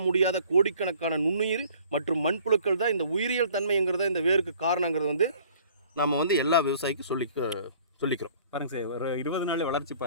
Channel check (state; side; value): inverted; both; correlation -0.54